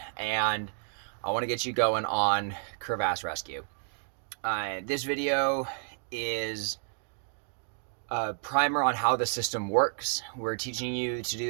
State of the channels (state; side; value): silent; left; 57 dB below the other